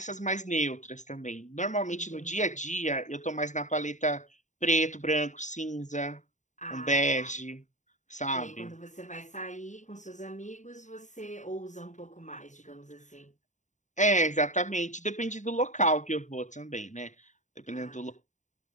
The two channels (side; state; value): right; late; 0.35 ms